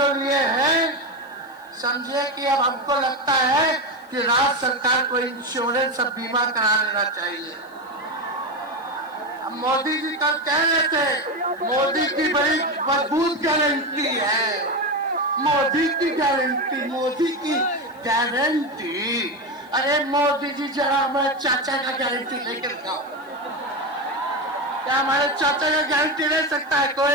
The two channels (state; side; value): noise; left; hiss, 30 dB below the sound